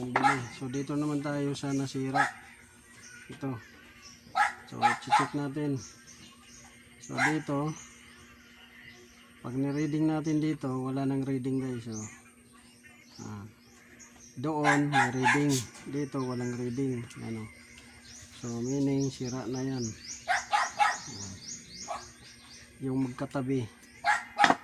bili. So dito naman tayo sa nasira. Ito. So check natin. So dito, pag ni-reading natin dito, wala nang reading guys. So, doon may reading, dito walang reading. Ano? So meaning sira na yan. Yung magkatabi.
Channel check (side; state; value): both; identical; correlation 1.00